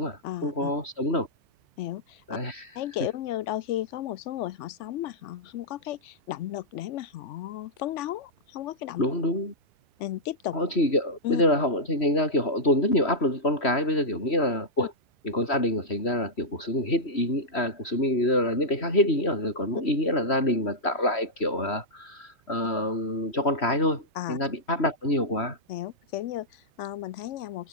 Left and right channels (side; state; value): right; late; 3.1 ms